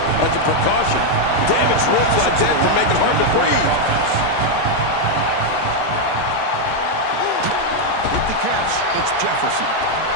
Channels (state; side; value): different; both; correlation 0.01